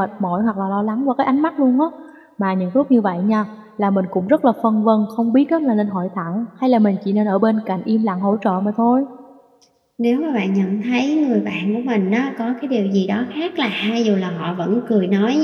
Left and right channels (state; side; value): identical; both; correlation 1.00